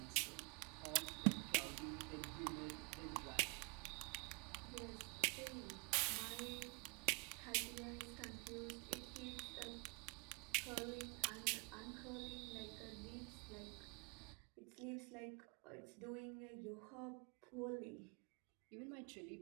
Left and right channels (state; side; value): quieter; left; 36.4 dB